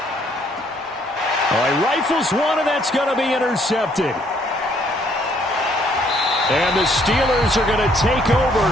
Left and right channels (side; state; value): both; normal; correlation 0.66